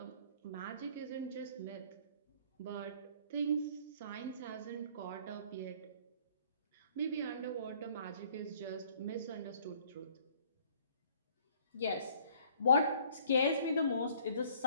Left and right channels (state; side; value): inverted; both; correlation -0.58